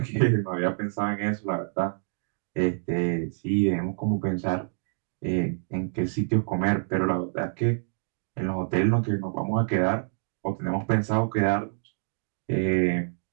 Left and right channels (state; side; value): silent; left; digital silence